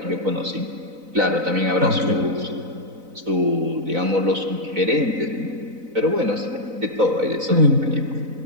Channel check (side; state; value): left; late; 4.0 ms